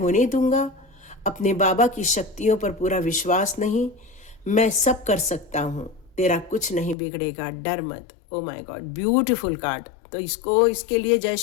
दूंगा, अपने बाबा की शक्तियों पर पूरा विश्वास नहीं, मैं सब कर सकता हूँ, तेरा कुछ नहीं बिगड़ेगा, डर मत। ओ माय गॉड, ब्यूटीफुल कार्ड। तो इसके लिए जय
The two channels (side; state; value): right; drops out; at 7.0 s